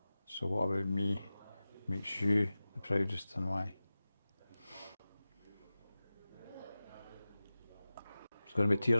So what about me makes you the proudest, and why? There's going to be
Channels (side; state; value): both; inverted; correlation -0.96